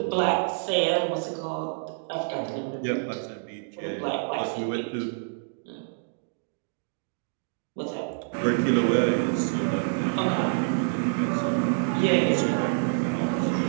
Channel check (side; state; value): left; silent; digital silence